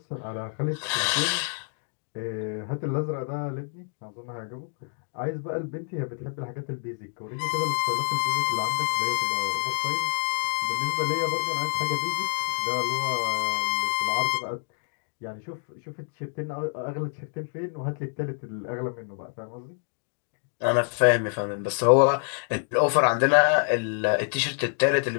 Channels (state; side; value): silent; right; 60 dB below the other